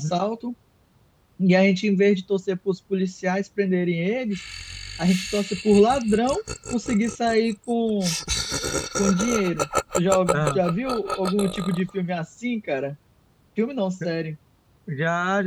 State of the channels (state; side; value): identical; both; correlation 1.00